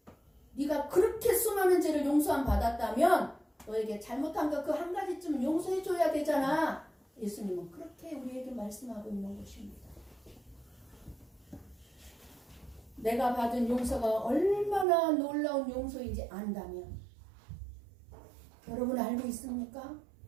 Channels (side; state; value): left; drops out; at 14.9 s